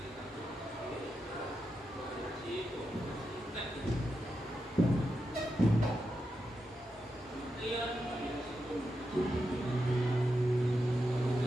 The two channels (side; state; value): both; normal; correlation 0.87